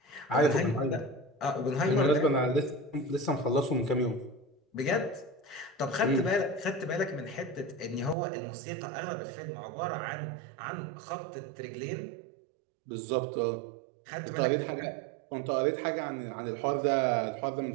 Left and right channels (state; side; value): drops out; left; at 8.2 s